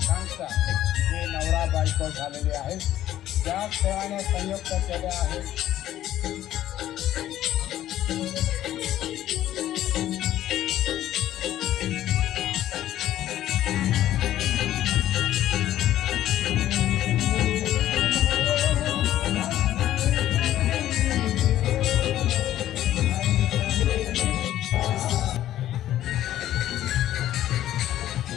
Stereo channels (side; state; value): right; quieter; 12.8 dB